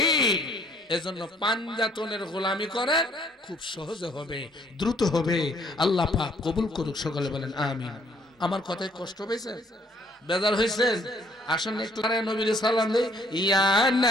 এজন্য পাঞ্জাতনের গোলামি করেন খুব সহজে হবে দ্রুত হবে আল্লাহ পাক কবুল করুক সকলে বলেন আমিন আমার কথায় কষ্ট পেয়েছেন বেজার হয়েছেন আসুন একটু নবীর সালাম দেই ইয়া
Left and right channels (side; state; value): both; normal; correlation 0.63